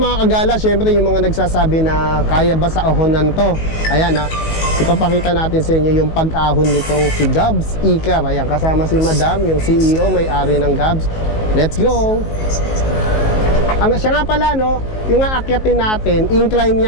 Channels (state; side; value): late; right; 19 ms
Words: kagala, syempre yung mga nagsasabi na kaya ba sa ahonan to. Ayan ipapakita natin sa inyo yung pag-ahon nitong si Gabs Icar. Ayan, kasama si Madam, yung CEO, may-ari ng Gabs. Let's go! Siya nga pala, no, yung aakyatin natin, incline